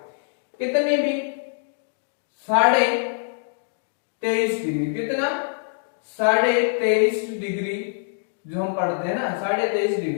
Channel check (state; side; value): silent; right; digital silence